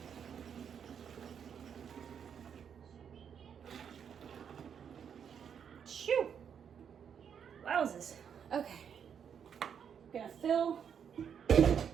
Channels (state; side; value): quieter; left; 7.7 dB